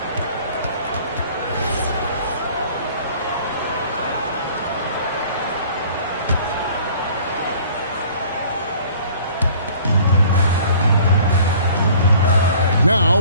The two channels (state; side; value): inverted; both; correlation -0.51